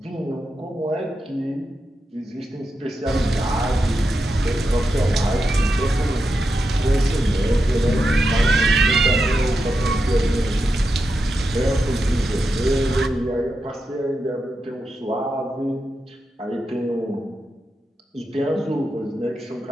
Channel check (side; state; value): both; normal; correlation 0.87